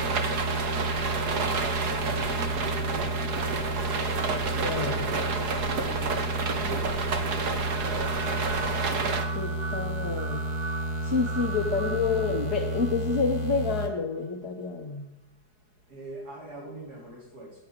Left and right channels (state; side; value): late; left; 4.8 ms